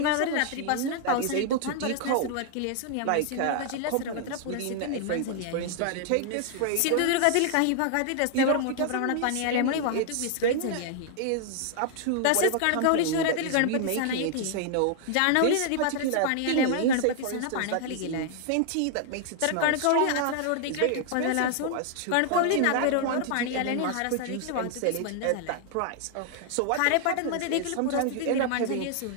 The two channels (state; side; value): different; both; correlation 0.00